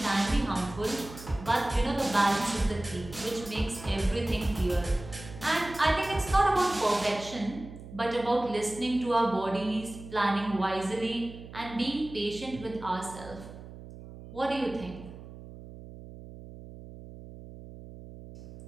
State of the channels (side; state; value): right; noise; hum, 15 dB below the sound